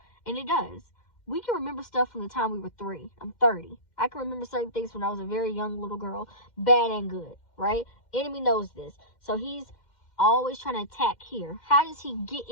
And it does. We can remember stuff from the time we were 3. I'm 30. I can remember certain things when I was a very young little girl, bad and good, right? Enemy knows this. So he's always trying to attack here. How does he get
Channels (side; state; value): right; late; 2.1 ms